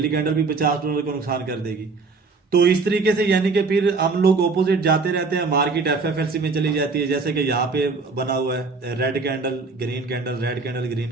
कैंडल भी $50 का नुकसान कर देगी। तो इस तरीके से यानी कि फिर हम लोग ऑपोजिट जाते रहते हैं, मार्केट एफएफएलसी में चली जाती है। जैसे कि यहाँ पे बना हुआ है red candle green candle, red candle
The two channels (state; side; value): quieter; left; 4.2 dB